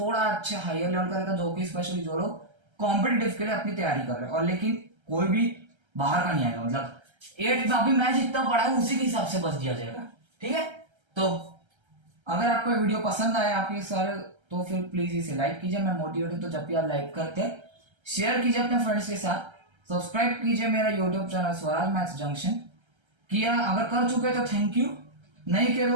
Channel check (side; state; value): left; late; 1.3 ms